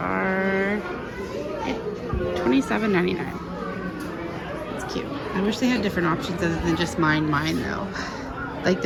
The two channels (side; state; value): both; identical; correlation 1.00